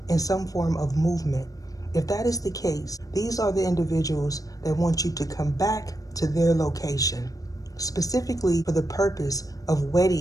in some form of movement. If that is the case, these are the individuals that want you to come back to their location, specifically for the purpose of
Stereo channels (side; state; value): right; late; 0.17 ms